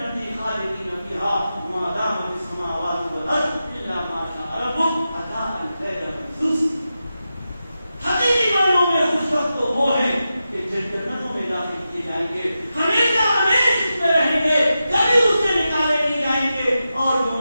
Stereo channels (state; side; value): inverted; both; correlation -0.91